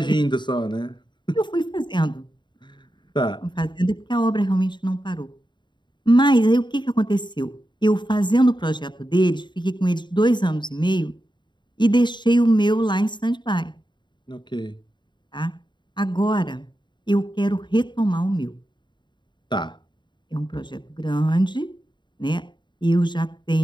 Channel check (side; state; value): right; late; 0.22 ms